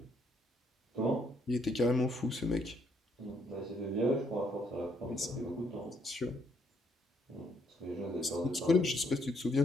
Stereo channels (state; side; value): normal; both; correlation 0.71